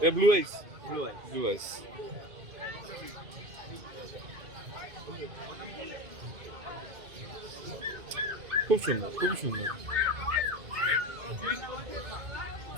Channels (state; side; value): late; left; 2.6 ms